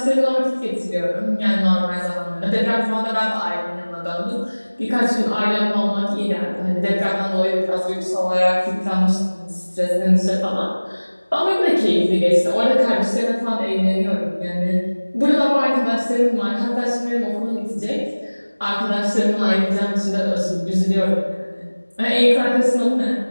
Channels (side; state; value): both; inverted; correlation -1.00